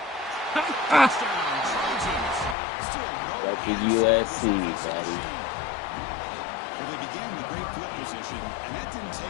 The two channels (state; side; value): drops out; right; at 2.6 s